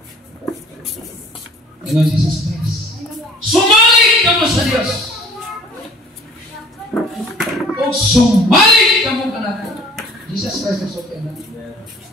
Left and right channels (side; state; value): both; normal; correlation 0.51